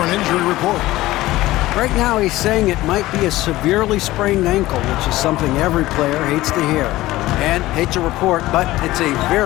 an injury report. Right now he's saying it might be a severely sprained ankle, which is something every player hates to hear. And hate to report, but it's a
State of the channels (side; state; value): right; quieter; 17.2 dB